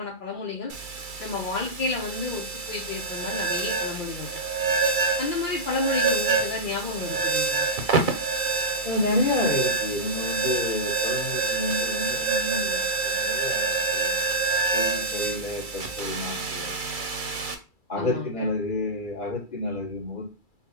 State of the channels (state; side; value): late; right; 2.3 ms